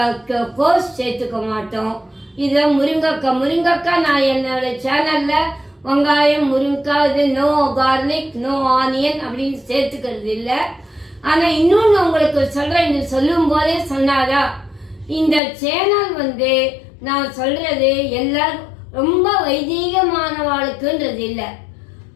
கோஸ் சேர்த்துக்க மாட்டோம். இத முருங்கைக்காய், முருங்கைக்காய் நான் என்னோட சேனல்ல வெங்காயம், முருங்கைக்காய், இது நோ கார்லிக், நோ ஆனியன் அப்படின்னு சேர்த்துக்கிறது இல்லை. ஆனா இன்னொன்னு உங்களுக்கு சொல்றேன், இது சொல்லும் போதே சொன்னாரா, இந்த சேனல் நான் சொல்றது எல்லாரும் ரொம்ப வைதீகமானவாளுக்குன்றது இல்லை.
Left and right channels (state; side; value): drops out; right; at 15.4 s